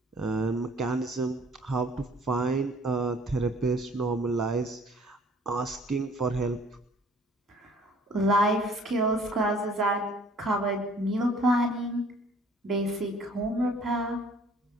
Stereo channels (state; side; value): normal; both; correlation 0.55